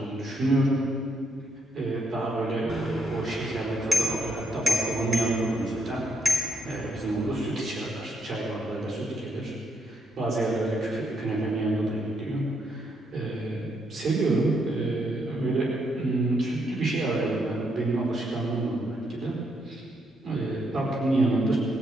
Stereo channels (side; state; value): both; normal; correlation 0.75